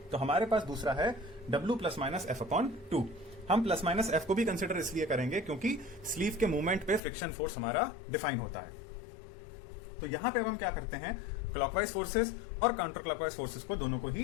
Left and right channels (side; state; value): right; drops out; at 7.0 s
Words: तो हमारे पास दूसरा है W plus minus F upon 2। हम प्लस माइनस एफ को भी कंसिडर इसलिए करेंगे क्योंकि स्लीव के मूवमेंट पे फ्रिक्शन फोर्स हमारा डिफाइन होता है। तो यहां पे अब हम क्या करते हैं, क्लॉकवाइज फोर्सेस और काउंटर क्लॉकवाइज फोर्सेस को दोनों को